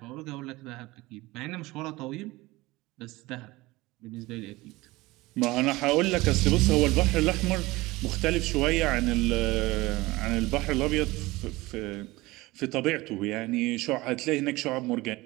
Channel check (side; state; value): left; quieter; 20.5 dB